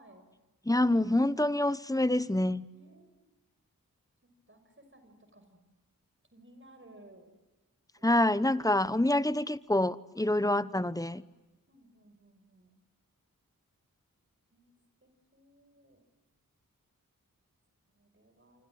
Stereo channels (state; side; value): normal; both; correlation 0.80